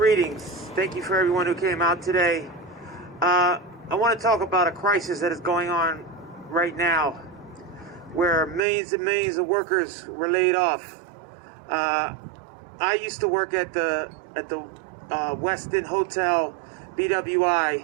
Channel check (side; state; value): left; drops out; at 8.6 s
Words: Thank you for everyone who came out today. I want to talk about a crisis that is going on right now, where millions and millions of workers were laid off. I used to work at the Westin Hotel,